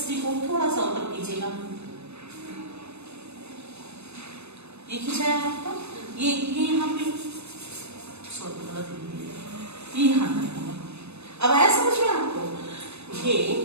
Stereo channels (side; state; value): left; late; 0.80 ms